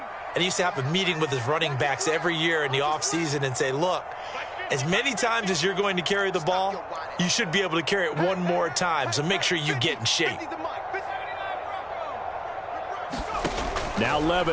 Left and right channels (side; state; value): both; identical; correlation 1.00